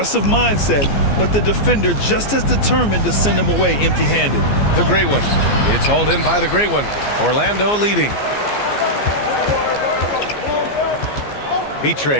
mindset, but the defender just as determined to send him away empty-handed. The great one. It's hauled in by the great one. Orlando leading.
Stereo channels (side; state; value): right; late; 14 ms